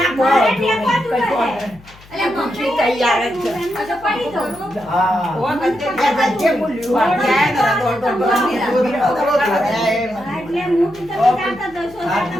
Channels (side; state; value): left; noise; hum, 24 dB below the sound